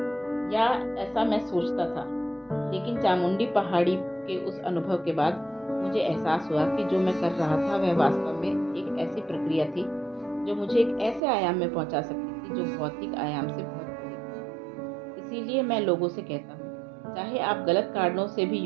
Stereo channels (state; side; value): drops out; left; at 11.2 s